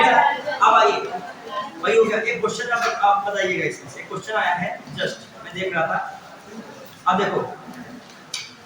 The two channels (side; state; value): both; identical; correlation 1.00